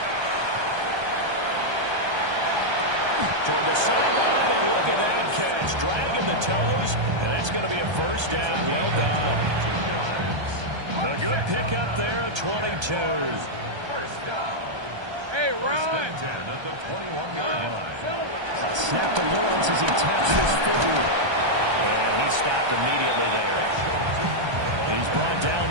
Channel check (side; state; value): left; late; 1.3 ms